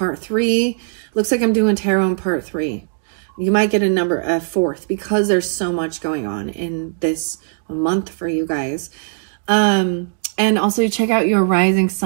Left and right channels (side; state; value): left; silent; digital silence